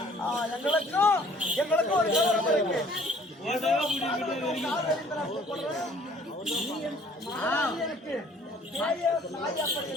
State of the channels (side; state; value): both; normal; correlation 0.56